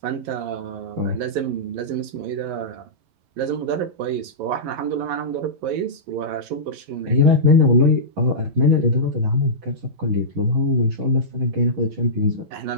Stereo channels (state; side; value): late; left; 11 ms